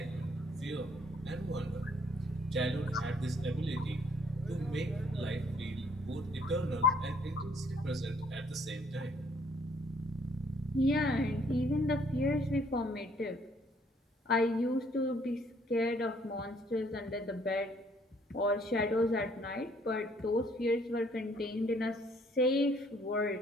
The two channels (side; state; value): both; normal; correlation 0.63